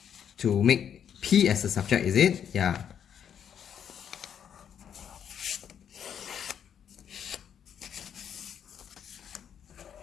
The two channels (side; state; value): right; quieter; 8.6 dB